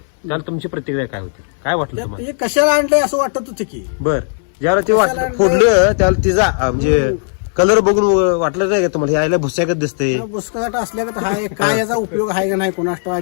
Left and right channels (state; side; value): silent; right; digital silence